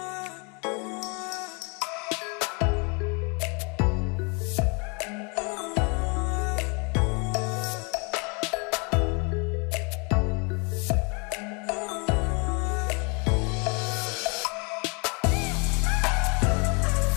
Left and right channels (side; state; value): right; quieter; 33.1 dB